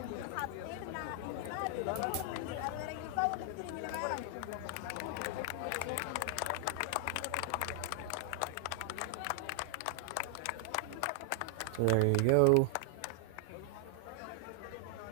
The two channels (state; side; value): different; both; correlation 0.00